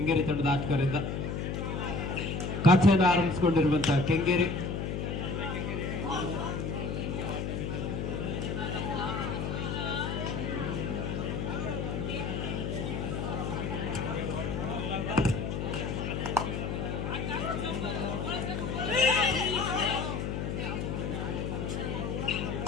ತಂಡದ ಆಟಗಾರರಿಂದ. ಖಾತೆಯನ್ನು ಆರಂಭಿಸಿಕೊಂಡಿರುವಂತಹ ಕೆಂಗೇರಿ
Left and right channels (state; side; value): noise; left; hum, 2 dB below the sound